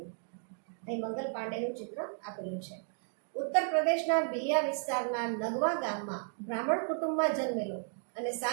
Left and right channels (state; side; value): silent; left; 55 dB below the other